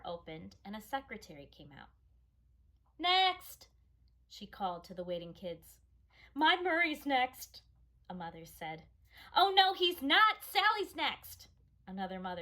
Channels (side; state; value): both; identical; correlation 1.00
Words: opened and a secretary came out. "Next!" she called to the waiting kids. "My Murray's next," a mother said. "Oh no, he's not! Sally's next," another